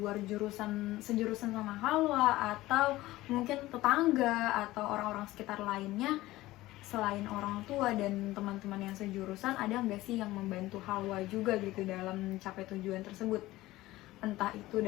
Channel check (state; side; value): quieter; right; 17.4 dB